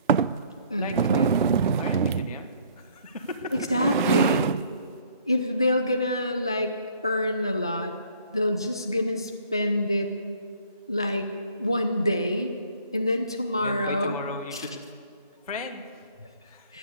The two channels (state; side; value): inverted; both; correlation -0.58